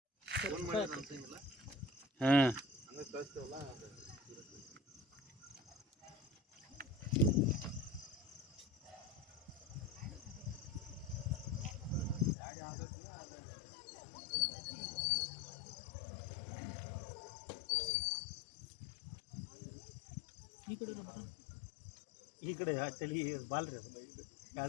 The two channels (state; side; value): drops out; right; at 12.4 s